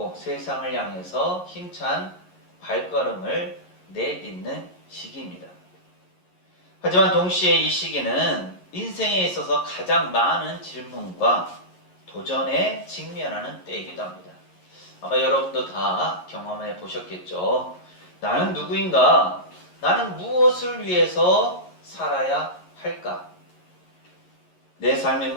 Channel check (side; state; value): right; late; 11 ms